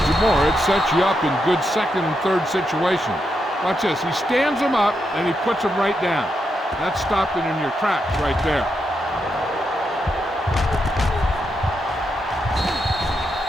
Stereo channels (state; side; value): normal; both; correlation 0.83